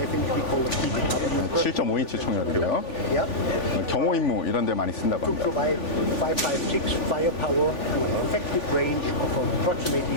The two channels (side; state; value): right; late; 3.5 ms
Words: we call it TPW. 7.5인치 총이었고요. Yeah. 경호 임무 이런 데 많이 쓴다고 To 합니다. provide 5.56 firepower and an effective range of approximately